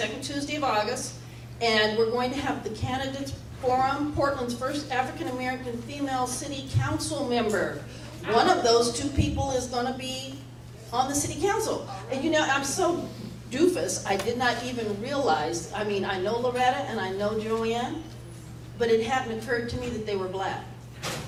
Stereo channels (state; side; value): identical; both; correlation 1.00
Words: Tuesday of August, and we're going to have the Candidates Forum, Portland's first African-American female city council member. One of those 2 people is going to be on the city council. And you know, I'm so doofus, I did not even realize, I mean, I know Loretta and I know Joanne, but it hadn't occurred to me that they were black.